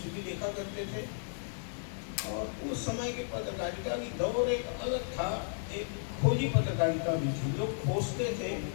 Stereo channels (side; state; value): right; silent; 55 dB below the other